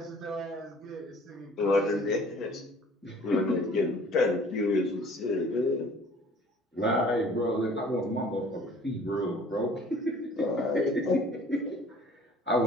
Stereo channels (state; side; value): normal; both; correlation 0.52